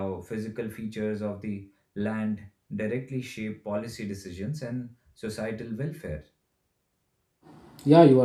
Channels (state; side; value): identical; both; correlation 1.00